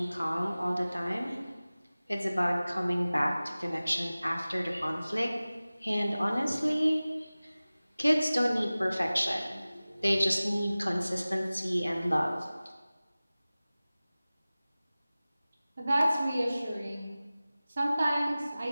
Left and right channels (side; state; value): both; inverted; correlation -0.98